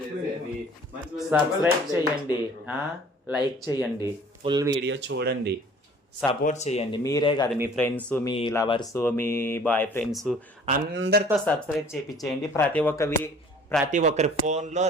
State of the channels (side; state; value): both; normal; correlation 0.51